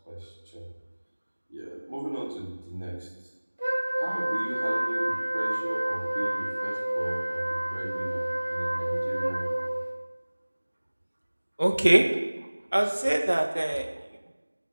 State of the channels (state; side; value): inverted; both; correlation -1.00